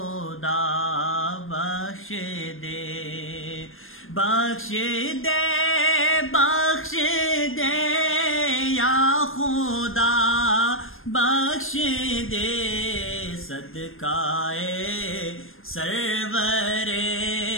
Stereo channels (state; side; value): late; right; 0.60 ms